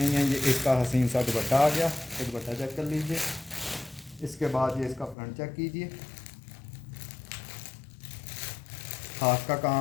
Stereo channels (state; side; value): drops out; right; at 5.2 s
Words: है। ये इसका हसीन सा दुपट्टा आ गया। तो दुपट्टा चेक कर लीजिए। इसके बाद ये इसका फ्रंट चेक कीजिए। हाथ का